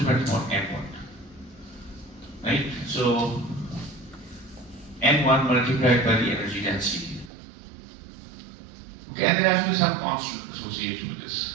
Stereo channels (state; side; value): drops out; left; at 7.3 s